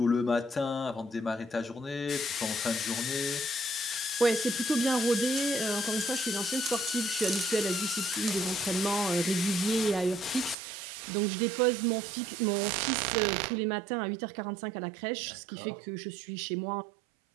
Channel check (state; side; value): drops out; left; at 10.6 s